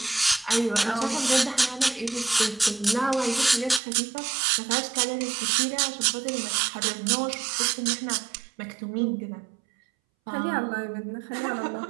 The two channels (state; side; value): drops out; left; at 3.8 s